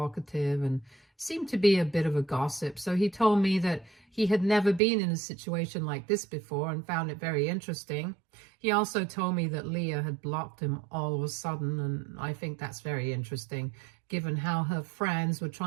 and seemed to be a bit of a gossip. So he told me that he had never been in a situation like this before and found it very interesting. He also told me that Leah had blocked him all of a sudden, and I think that's very interesting, given how her friends were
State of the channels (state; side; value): drops out; left; at 4.8 s